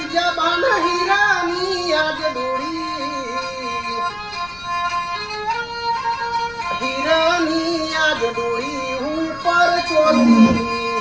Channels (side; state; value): left; noise; rumble, 21 dB below the sound